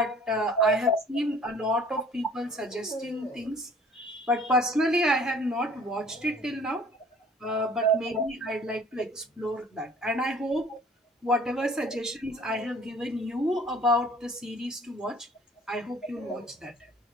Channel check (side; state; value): both; normal; correlation 0.52